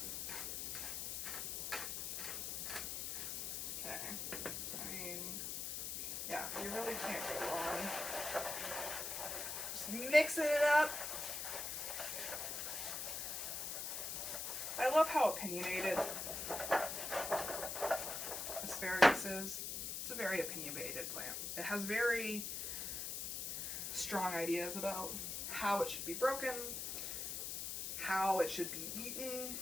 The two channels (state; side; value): noise; left; hiss, 3 dB below the sound